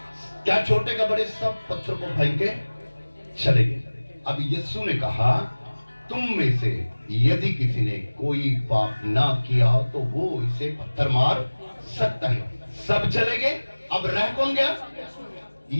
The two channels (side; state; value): both; inverted; correlation -1.00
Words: क्या छोटे का बड़े सब पत्थर को फेंक के चले गए। अब यीशु ने कहा, तुम में से यदि किसी ने कोई पाप ना किया तो वो इसे पत्थर मार सकता है। सब चले गए। अब रह कौन गया?